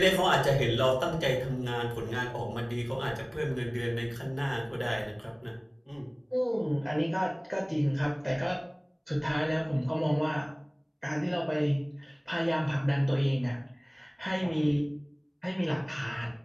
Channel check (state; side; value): identical; both; correlation 1.00